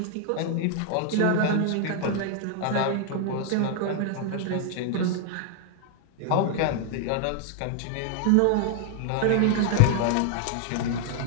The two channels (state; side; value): different; both; correlation 0.00